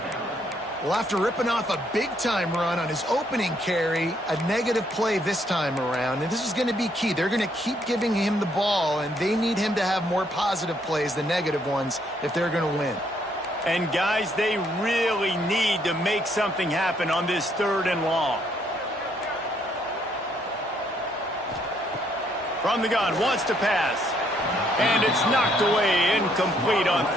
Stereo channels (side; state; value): both; normal; correlation 0.70